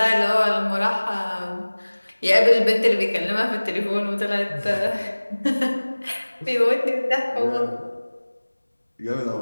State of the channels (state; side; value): inverted; both; correlation -1.00